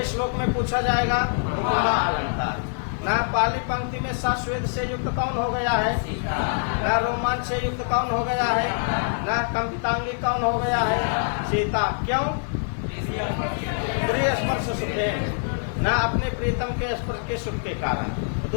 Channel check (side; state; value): right; silent; digital silence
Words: श्लोक में पूछा जाएगा उपमा अलंकार। ना पहली पंक्ति में सश्वेद से युक्त कौन हो गया है, ना रोमांच से युक्त कौन हो गया है, ना कंपितांगी कौन हो गया है, सीता। क्यों? प्रिय स्पर्श सुखे, ना अपने प्रीतम के स्पर्श के सुख के कारण।